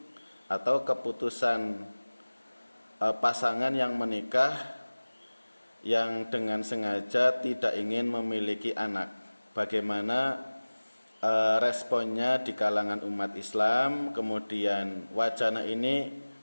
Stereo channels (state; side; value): inverted; both; correlation -1.00